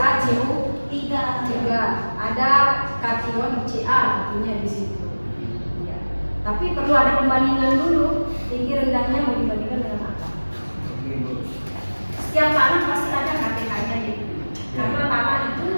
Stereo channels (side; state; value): both; inverted; correlation -1.00